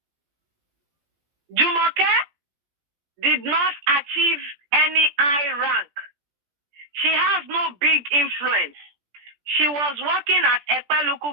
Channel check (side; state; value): left; late; 17 ms